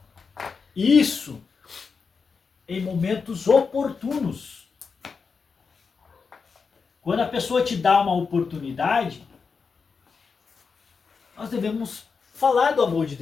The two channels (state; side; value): quieter; right; 5.3 dB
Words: Isso em momentos oportunos. Quando a pessoa te dá uma oportunidade, nós devemos falar do amor de